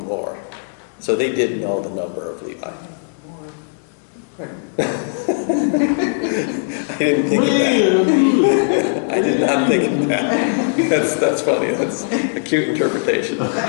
more? So they did know the number of Levi. I didn't think of that. I did not think of that. That's funny. That's a cute interpretation.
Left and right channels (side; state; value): right; silent; digital silence